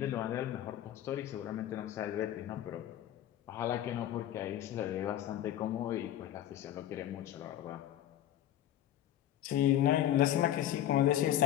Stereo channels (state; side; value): quieter; right; 12.0 dB